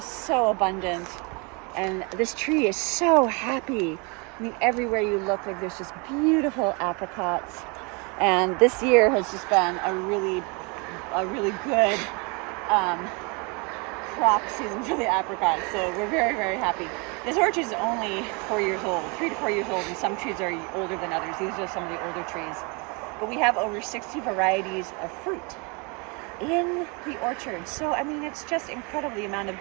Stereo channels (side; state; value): left; quieter; 31.4 dB